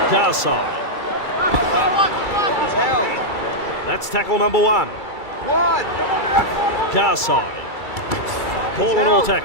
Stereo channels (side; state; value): right; late; 2.3 ms